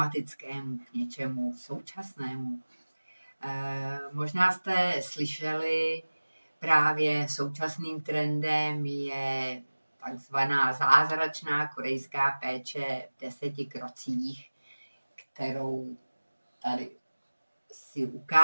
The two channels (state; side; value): inverted; both; correlation -1.00